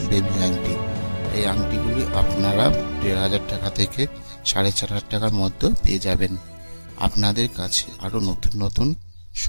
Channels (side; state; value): both; inverted; correlation -1.00